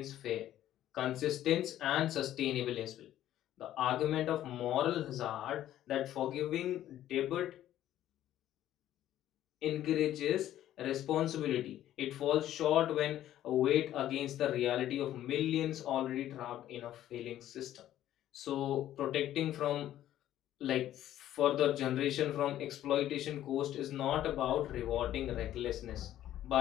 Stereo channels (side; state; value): right; quieter; 12.5 dB